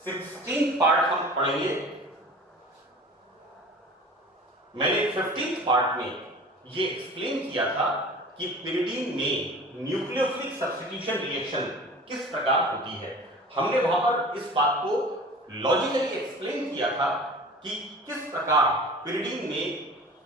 16th पार्ट हम पढ़ेंगे, मैंने 15th पार्ट में ये एक्सप्लेन किया था कि pyridine में न्यूक्लियोफिलिक सब्स्टिट्यूशन रिएक्शन किस प्रकार होती है। हमने वहां पर इस बात को लॉजिकली एक्सप्लेन किया था कि किस प्रकार pyridine में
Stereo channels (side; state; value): both; normal; correlation 0.41